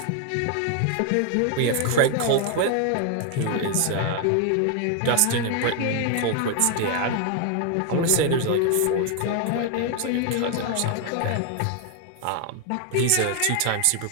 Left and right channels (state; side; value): different; both; correlation 0.00